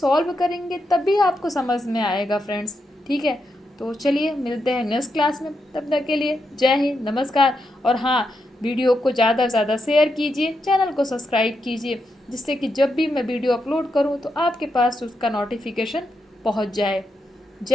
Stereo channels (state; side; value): normal; both; correlation 0.84